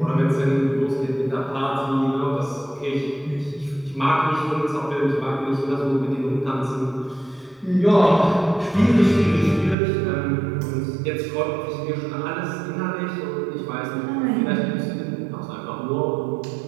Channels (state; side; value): drops out; left; at 9.8 s